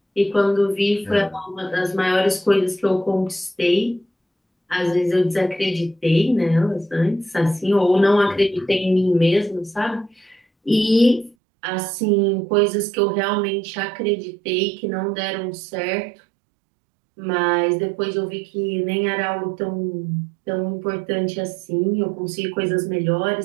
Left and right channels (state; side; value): drops out; left; at 11.4 s